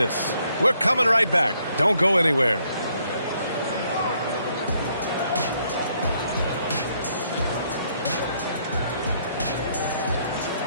We're coming right back. Don't go anywhere.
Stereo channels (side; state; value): both; inverted; correlation -0.70